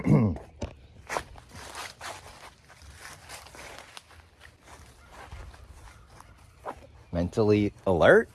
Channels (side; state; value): both; identical; correlation 1.00